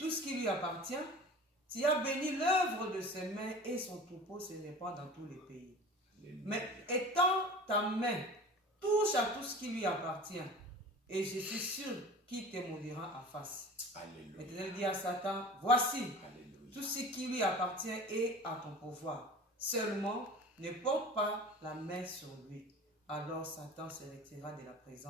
ce qui lui appartient? Tu as béni l'œuvre de ses mains et son troupeau se répand dans tous les pays. Alléluia. Mais étends ta main, touche à tout ce qui lui appartient, et je suis sûr qu'il te maudira en face. Alléluia. L'Éternel dit à Satan, voici, Alléluia. Tout ce qui lui appartient est à ton pouvoir. Seulement, ne porte pas la main sur lui. Alors Satan se retira de la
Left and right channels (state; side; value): normal; both; correlation 0.39